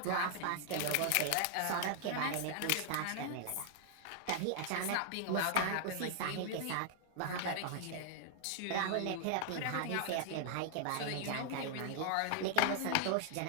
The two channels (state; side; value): different; both; correlation 0.00